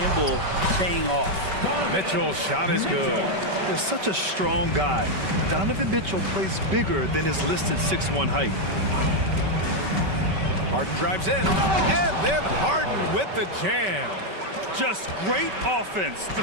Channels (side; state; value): left; late; 5.2 ms